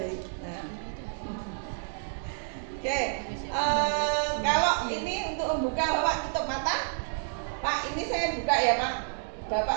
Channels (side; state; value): left; silent; digital silence